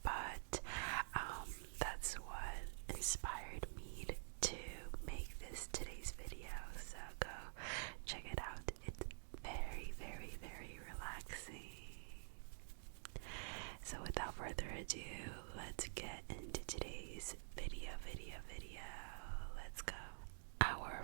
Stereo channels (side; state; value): left; silent; digital silence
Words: but that's what inspired me to make this today's video, so go check it out. It's very, very, very relaxing. So without further ado, let's get into today's video. Let's go. Our